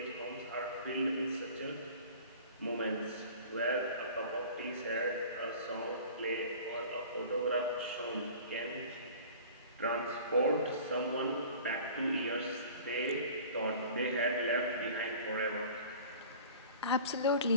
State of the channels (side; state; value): both; inverted; correlation -0.43